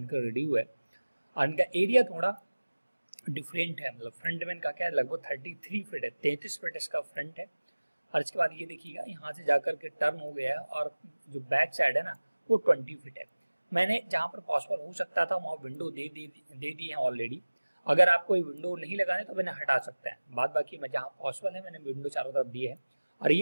रेडी हुआ है। और इनका एरिया थोड़ा डिफरेंट है, मतलब फ्रंट में इनका क्या है, लगभग 33 फीट है, 33 फीट इसका फ्रंट है। और इसके बाद ये देखिएगा यहाँ से जाकर के टर्न हो गया है और जो बैक साइड है ना वो 20 फीट है। मैंने जहाँ पर पॉसिबल हो सकता था वहाँ विंडो दे दी है ऑलरेडी। अगर आपको ये विंडो नहीं लगाने तो मैंने हटा सकता है, बाद बाकी मैं जहाँ पॉसिबल है मैंने विंडो चारों तरफ दी है। और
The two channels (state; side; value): inverted; both; correlation -1.00